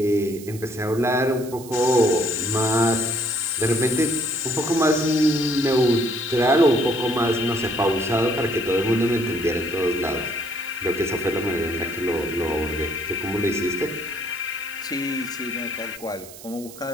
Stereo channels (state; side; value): noise; right; hiss, 17 dB below the sound